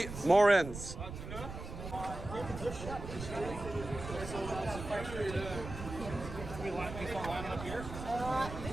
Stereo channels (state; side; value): noise; right; rumble, 9 dB below the sound